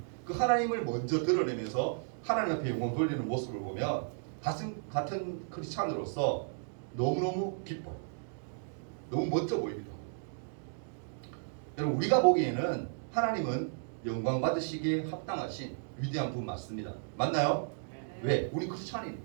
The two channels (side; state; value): left; silent; digital silence